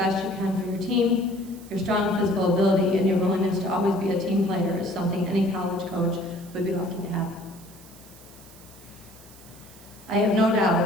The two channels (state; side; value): noise; right; hiss, 22 dB below the sound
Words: you can for your team, your strong physical ability, and your willingness to always be a team player is something any college coach would be lucky to have. I have no